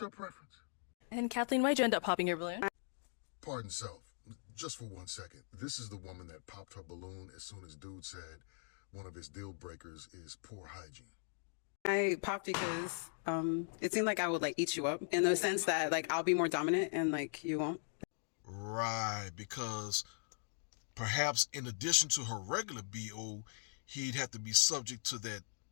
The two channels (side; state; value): right; silent; digital silence